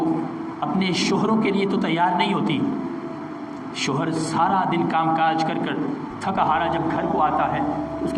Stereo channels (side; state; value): both; identical; correlation 1.00